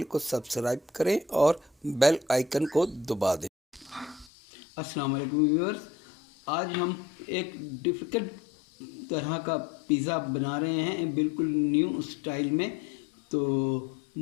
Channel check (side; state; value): right; drops out; at 4.3 s